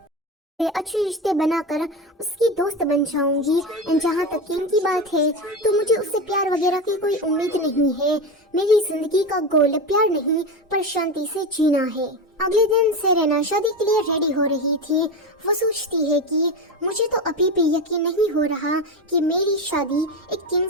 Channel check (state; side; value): normal; both; correlation 0.20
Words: अच्छे रिश्ते बनाकर उसकी दोस्त बन जाऊंगी। एंड जहाँ तक किंग की बात है तो मुझे उससे प्यार वगैरह की कोई उम्मीद नहीं है। मेरी जिंदगी का गोल प्यार नहीं पर शांति से जीना है। अगले दिन सेरेना शादी के लिए रेडी हो रही थी। वो सोचती है कि मुझे तो अभी भी यकीन नहीं हो रहा कि मेरी शादी एक किंग